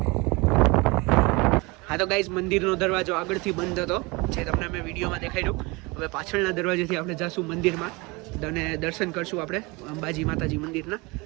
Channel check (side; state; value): left; quieter; 25.8 dB